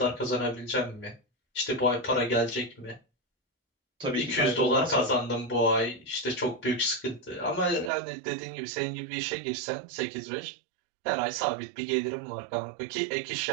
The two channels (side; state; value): left; drops out; at 7.9 s